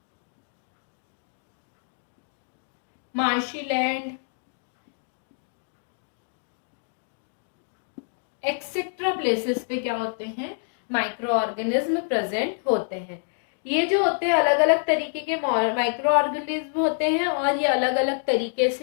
marshy land, etcetera places पे क्या होते हैं? माइक्रो ऑर्गेनिज्म प्रेजेंट होते हैं. ये जो होते हैं अलग अलग तरीके के माइक्रो ऑर्गेनिज्म होते हैं और ये अलग अलग तरीके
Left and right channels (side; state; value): right; silent; digital silence